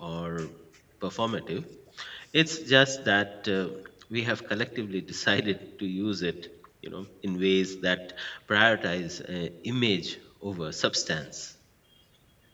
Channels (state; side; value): identical; both; correlation 1.00